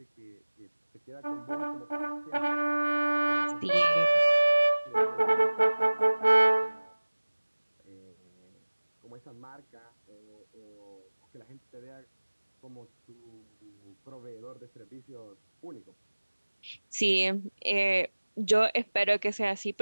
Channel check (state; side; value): inverted; both; correlation -1.00